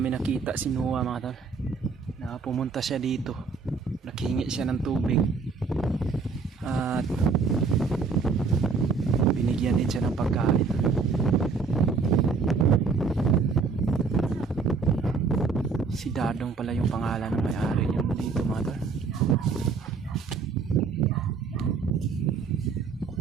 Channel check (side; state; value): left; quieter; 4.9 dB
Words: nakita si Noah, mga tol. Na pumunta siya dito, naghingi siya ng tubig at binigyan din siya ng pagkain. Si Dadong pala yung pangalan ng may-ari yung dito, mga tol.